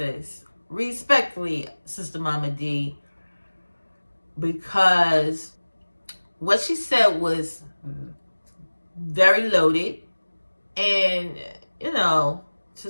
respectfully, Sister Momma Dee, because what she said was very loaded, and you know, to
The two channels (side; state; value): both; inverted; correlation -1.00